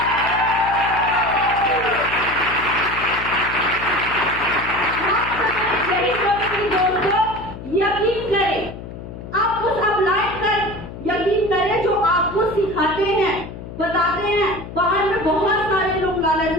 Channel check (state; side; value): noise; left; hum, 12 dB below the sound